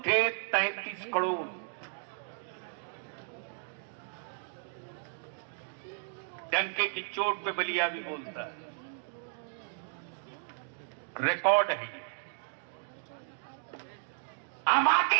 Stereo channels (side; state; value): left; silent; digital silence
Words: थे 33 करोड़। डंके की चोट पे बलिया भी बोलता है, रिकॉर्ड है ये। आबादी